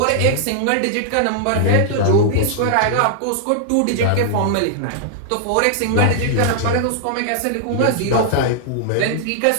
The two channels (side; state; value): both; different; correlation -0.01